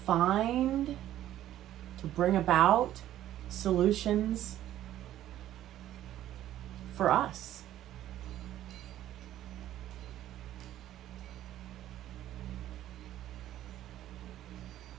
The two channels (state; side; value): quieter; left; 12.8 dB